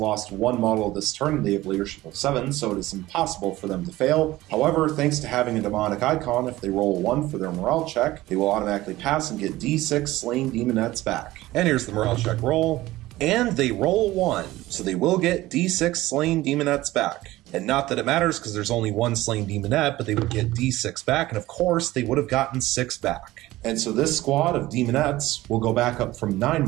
1 model this turn. They have leadership of 7, so it is impossible for them to fail. However, thanks to having a demonic icon, if they roll a 1 for their morale check, they will automatically pass and get D6 slain Demonettes back. And here's the morale check roll. And they roll 1, so they will get D6 slain Demonettes back. And not that it matters because there's only 1 slain Demonette, but they would get D6 back, and of course they would have gotten 6 back. And so this squad of Demonettes will go back up from 9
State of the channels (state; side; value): quieter; left; 17.3 dB